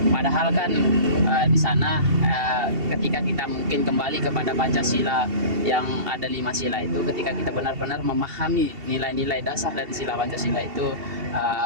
Padahal kan di sana ketika kita mungkin kembali kepada Pancasila yang ada 5 sila itu, ketika kita benar-benar memahami nilai-nilai dasar dari sila Pancasila itu,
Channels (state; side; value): late; left; 2.7 ms